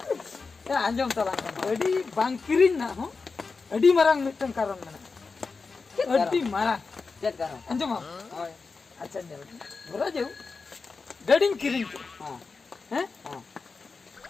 या आंजम तला गड़ी बांग किरिन ना हो अडी मारंग मिटन कारण मने अडी मारा चेक करो अंजम होय अच्छा ने बोला जो गडिंग किरिन के हां हैं हां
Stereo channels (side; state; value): right; quieter; 4.5 dB